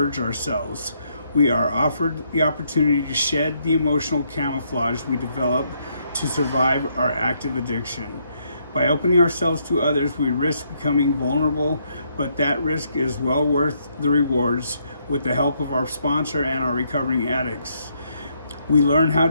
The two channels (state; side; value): inverted; both; correlation -0.73